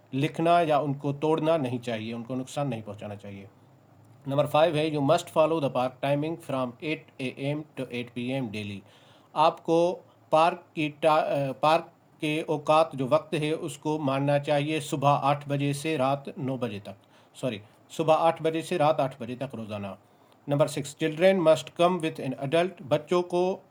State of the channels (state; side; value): identical; both; correlation 1.00